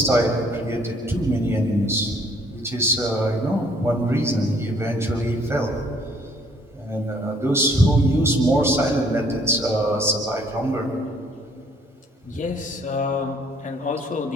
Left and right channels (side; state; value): both; normal; correlation 0.62